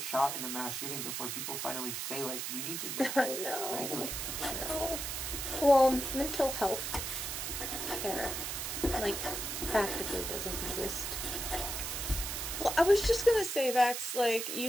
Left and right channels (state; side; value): noise; right; hiss, 3 dB below the sound